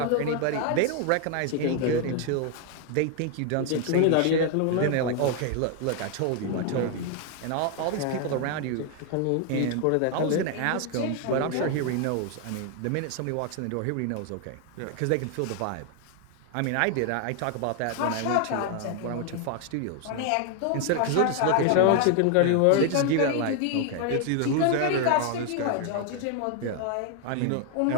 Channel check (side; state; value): both; different; correlation 0.00